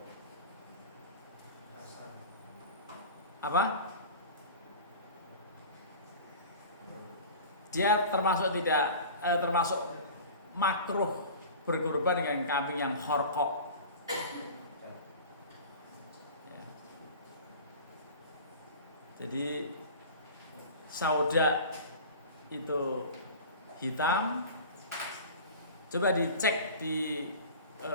Apa? Dia termasuk termasuk makruh berkorban dengan kambing yang kharqa. Ya. Jadi sauda itu hitam. Coba dicek di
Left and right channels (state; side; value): inverted; both; correlation -0.38